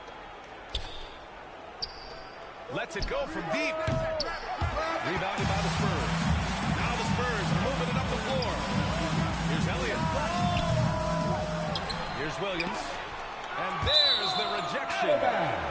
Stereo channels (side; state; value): both; identical; correlation 1.00